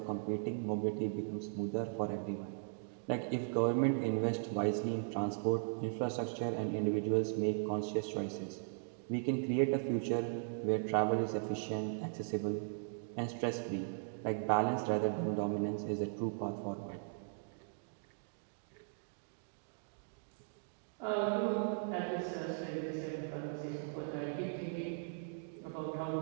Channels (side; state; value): left; silent; digital silence